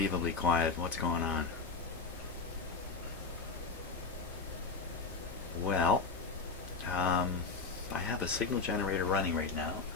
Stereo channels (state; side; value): quieter; right; 4.5 dB